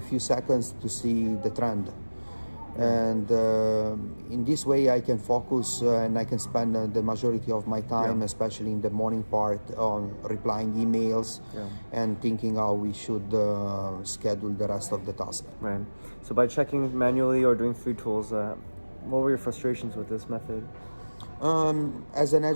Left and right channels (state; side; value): inverted; both; correlation -1.00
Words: seconds to see the trend. And in this way I can focus and I can spend the majority of my time, especially in the morning part, on replying emails and thinking how we should schedule the rest of the task. Right. So by checking manually or doing free tools, what were your frustrations with this method? As an